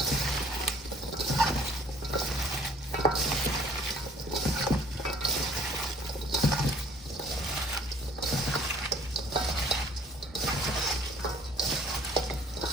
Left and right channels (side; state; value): both; normal; correlation 0.53